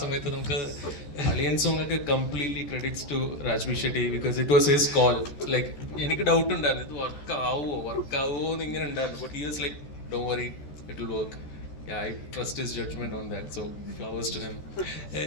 സമയത്ത് നമുക്ക് അളിയൻ സോങ് ഒക്കെ completely credits to Raj B Shetty, because it was his call. Like എനിക്ക് ഡൗട്ട് ഉണ്ടായിരുന്നു ഇത് വർക്ക് ആവുമോ എന്ന് ഇങ്ങനെ ഉണ്ടായിരുന്നു. But he was like don't worry, it will work. I trust his judgment on that, so flowers to him.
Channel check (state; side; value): late; right; 14 ms